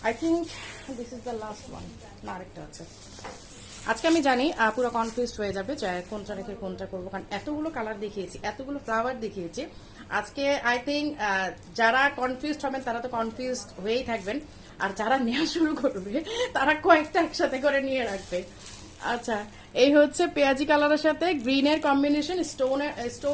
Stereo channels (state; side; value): identical; both; correlation 1.00